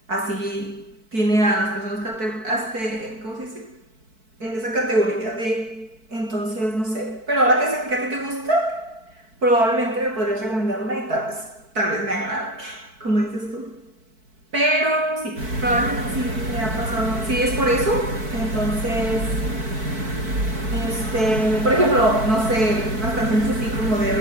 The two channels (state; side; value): late; left; 4.6 ms